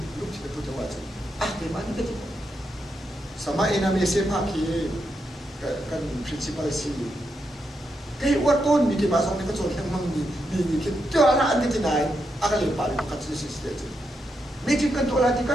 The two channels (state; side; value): normal; both; correlation 0.83